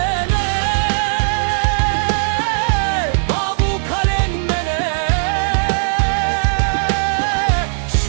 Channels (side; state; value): left; silent; digital silence